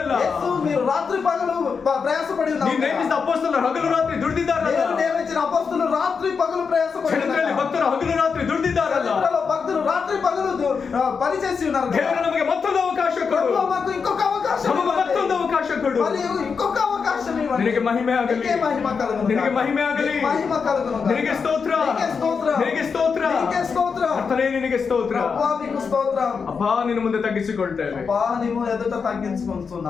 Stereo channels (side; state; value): right; quieter; 5.6 dB